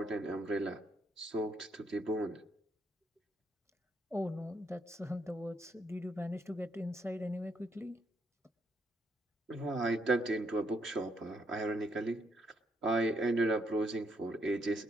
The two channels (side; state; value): both; normal; correlation 0.74